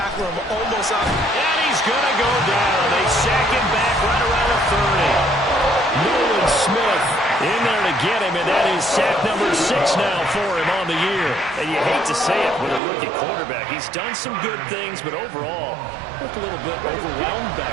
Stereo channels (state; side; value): drops out; left; at 12.8 s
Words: him almost out. And he's going to go down. They sack him back right around the 30. Nolan Smith in there to get him, and that is sack number 6 now for him on the year. And you hate to say it with a rookie quarterback. He's done some good things, but overall, looked a little bit overwhelmed